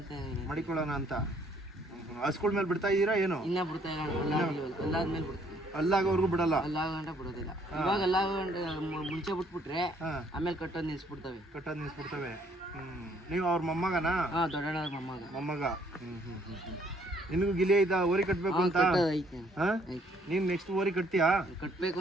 ಮಡಿಕೊಳ್ಳೋಣ ಅಂತ ಹಸ್ಗಳ ಮೇಲೆ ಬಿಡ್ತಾ ಇದ್ದೀರಾ ಏನು? ಇನ್ನ ಬಿಡ್ತಾ ಇಲ್ಲ, ಅಲ್ಲಾದ್ಮೇಲೆ ಬಿಡ್ತೀವಿ. ಅಲ್ಲಾಗೋರ್ಗು ಬಿಡಲ್ಲ? ಅಲ್ಲಾಗಂಟ ಬಿಡೋದಿಲ್ಲ. ಇವಾಗ ಅಲ್ಲಾಗಂಟ ಮುಂಚೆ ಬಿಟ್ಬಿಟ್ರೆ ಆಮೇಲೆ ಕಟ್ಟೋದು ನಿಲ್ಸ್ಬಿಡ್ತವೆ. ನೀವು ಅವ್ರ ಮೊಮ್ಮಗನಾ? ದೊಡ್ಡಣ್ಣ ಮೊಮ್ಮಗ. ನಿನಗೂ ಗಿಲಿ ಐತಾ ಓರಿ ಕಟ್ಬೇಕು ಅಂತ? ನೀನ್ ನೆಕ್ಸ್ಟ್ ಓರಿ ಕಟ್ತೀಯಾ? ಕಟ್ಬೇಕು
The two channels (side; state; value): both; normal; correlation 0.65